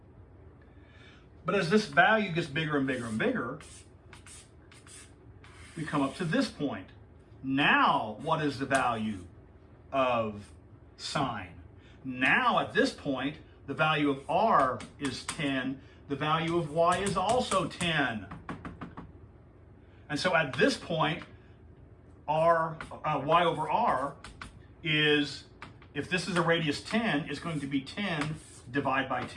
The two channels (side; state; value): both; identical; correlation 1.00